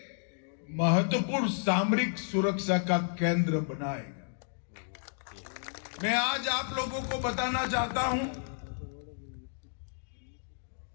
महत्वपूर्ण सामरिक सुरक्षा का केंद्र बनाएगा। मैं आज आप लोगों को बताना चाहता हूं,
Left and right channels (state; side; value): silent; right; digital silence